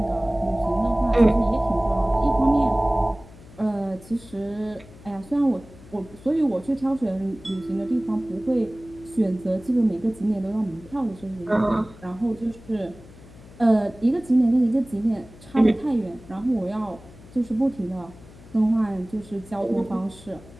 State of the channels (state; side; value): noise; left; hum, 21 dB below the sound